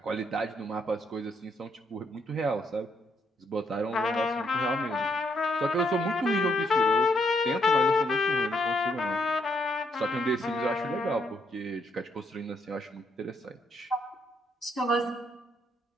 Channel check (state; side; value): normal; both; correlation 0.74